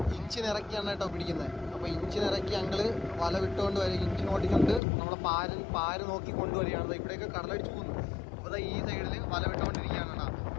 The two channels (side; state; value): right; drops out; at 4.8 s